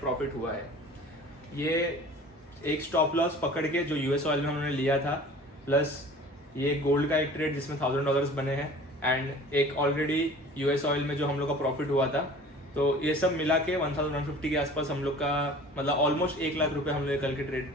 हुआ है। ये एक स्टॉप लॉस पकड़ के जो US ऑयल में उन्होंने लिया था, प्लस ये गोल्ड का एक ट्रेड जिसमें $1000 बने हैं, एंड एक ऑलरेडी US ऑयल में जो हम लोग का प्रॉफिट हुआ था। तो ये सब मिला के 1150 के आसपास हम लोग का, मतलब ऑलमोस्ट 1 लाख रुपए हम लोग कल के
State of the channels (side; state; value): both; normal; correlation 0.44